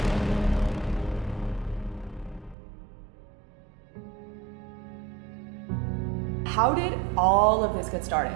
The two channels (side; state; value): left; drops out; at 2.6 s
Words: How did all of this get